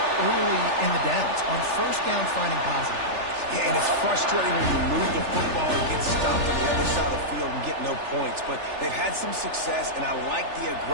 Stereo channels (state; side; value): late; left; 3.4 ms